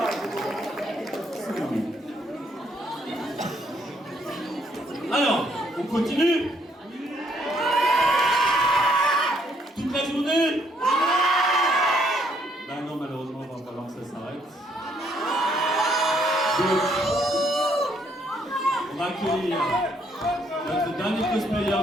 Alors, on continue. Toute la journée. Bah non, malheureusement, il va falloir que ça s'arrête. Donc, on va accueillir notre dernier cosplayer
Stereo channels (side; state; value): both; normal; correlation 0.69